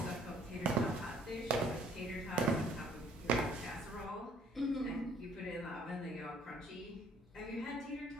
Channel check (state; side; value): normal; both; correlation 0.60